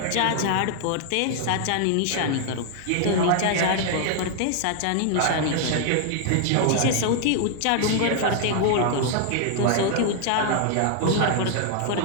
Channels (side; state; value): both; different; correlation 0.00